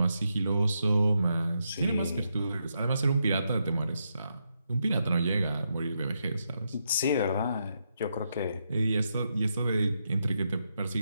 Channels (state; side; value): inverted; both; correlation -0.82